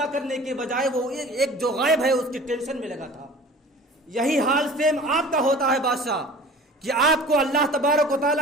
کرنے کے بجائے وہ ایک جو غائب ہے اس کی ٹینشن میں لگا تھا۔ یہی حال سیم آپ کا ہوتا ہے بادشاہ، کہ آپ کو اللہ تبارک و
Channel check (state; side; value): normal; both; correlation 0.43